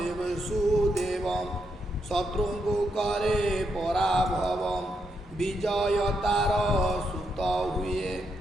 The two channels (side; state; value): both; normal; correlation 0.81